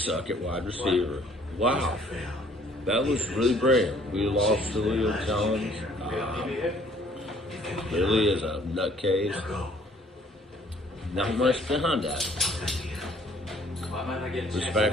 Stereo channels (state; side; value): normal; both; correlation 0.59